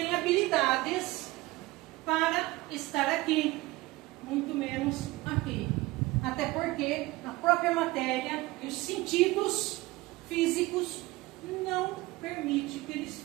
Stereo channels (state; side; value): quieter; left; 20.1 dB